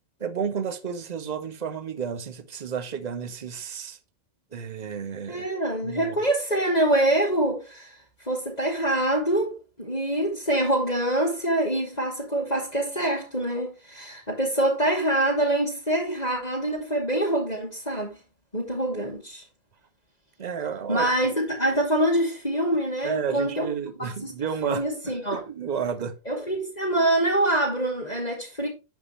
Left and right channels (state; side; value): late; right; 2.0 ms